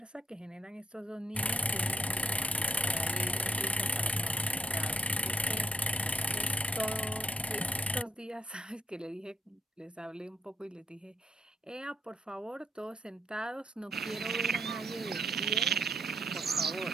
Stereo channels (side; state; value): both; normal; correlation 0.76